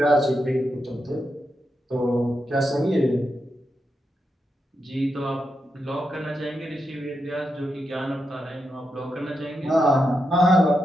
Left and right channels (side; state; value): both; normal; correlation 0.85